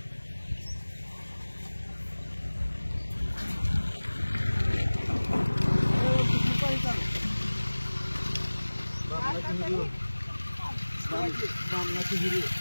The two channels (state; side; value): inverted; both; correlation -1.00